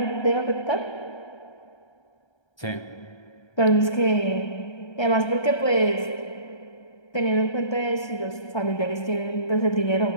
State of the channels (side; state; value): right; late; 1.3 ms